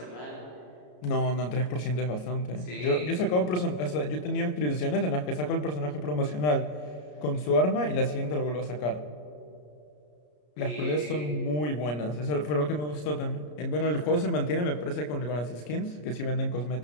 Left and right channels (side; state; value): right; late; 33 ms